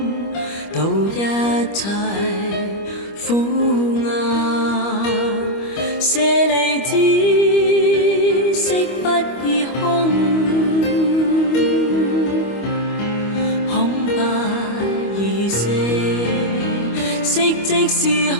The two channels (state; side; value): late; right; 25 ms